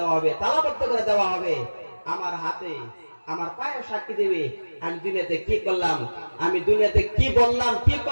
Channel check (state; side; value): inverted; both; correlation -1.00